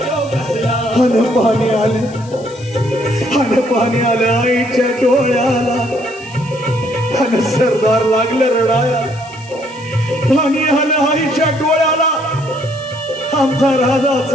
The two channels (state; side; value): noise; left; hiss, 23 dB below the sound